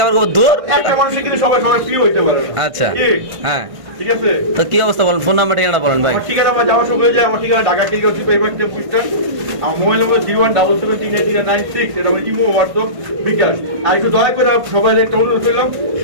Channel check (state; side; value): late; left; 1.6 ms